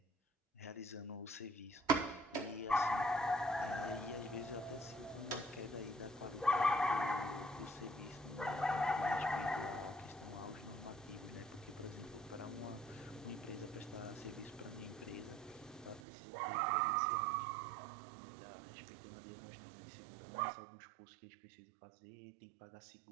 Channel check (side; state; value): left; drops out; at 16.0 s